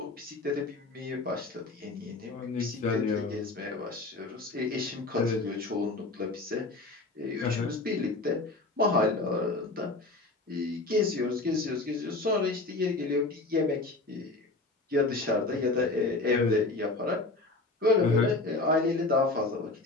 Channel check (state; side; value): quieter; right; 3.2 dB